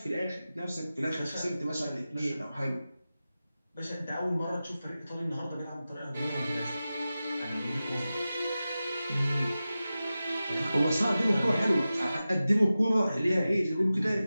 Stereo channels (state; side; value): inverted; both; correlation -0.94